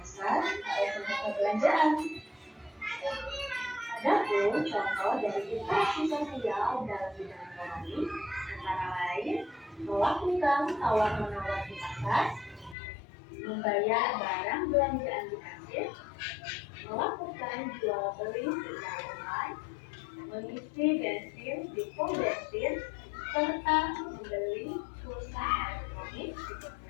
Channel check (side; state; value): right; drops out; at 12.8 s